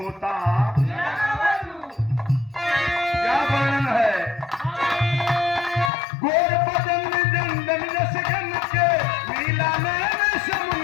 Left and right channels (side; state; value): right; drops out; at 5.9 s